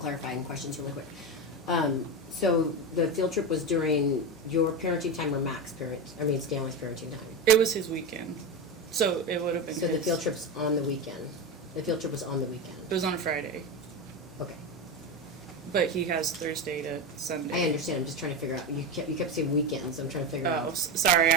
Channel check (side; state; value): both; normal; correlation 0.17